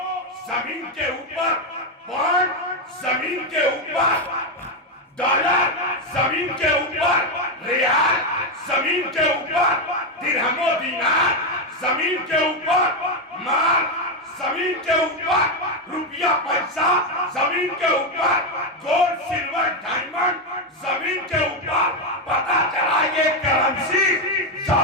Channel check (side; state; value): both; normal; correlation 0.07